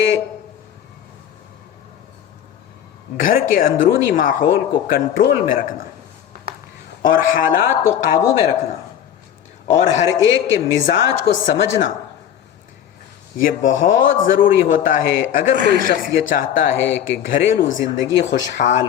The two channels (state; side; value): quieter; right; 9.9 dB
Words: گھر کے اندرونی ماحول کو کنٹرول میں رکھنا اور حالات کو قابو میں رکھنا اور ہر ایک کے مزاج کو سمجھنا یہ بہت ضروری ہوتا ہے اگر کوئی شخص یہ چاہتا ہے کہ گھریلو زندگی خوشحال